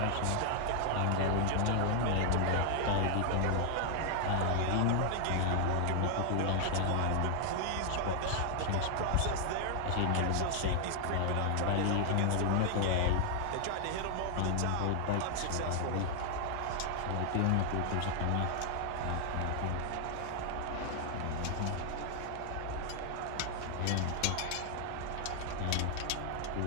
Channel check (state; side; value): different; both; correlation 0.00